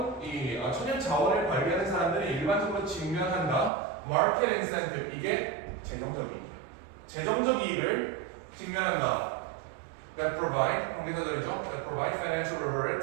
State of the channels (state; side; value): drops out; left; at 3.7 s